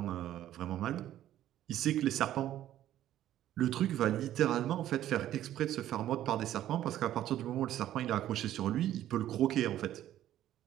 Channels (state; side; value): quieter; left; 12.5 dB